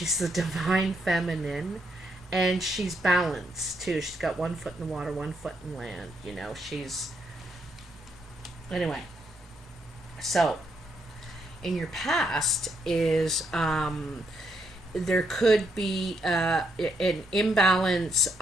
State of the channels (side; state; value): both; normal; correlation 0.77